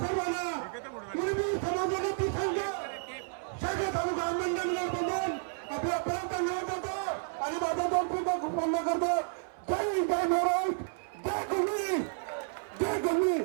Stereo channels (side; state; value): left; silent; 57 dB below the other